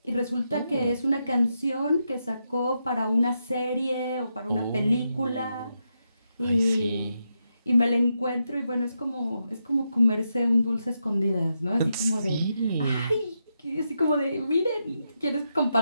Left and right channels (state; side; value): inverted; both; correlation -0.84